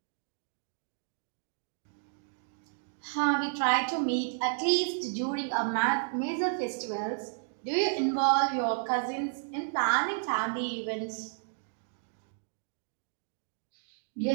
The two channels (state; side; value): silent; left; digital silence